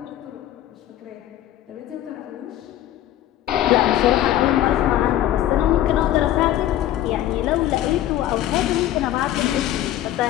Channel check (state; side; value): quieter; right; 13.0 dB